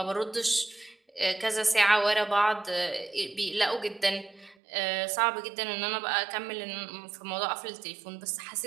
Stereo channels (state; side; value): drops out; left; at 4.5 s